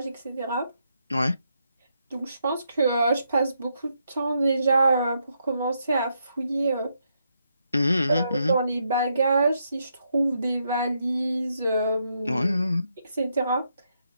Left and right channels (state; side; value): inverted; both; correlation -0.79